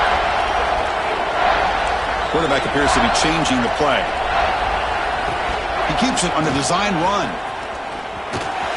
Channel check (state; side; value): identical; both; correlation 1.00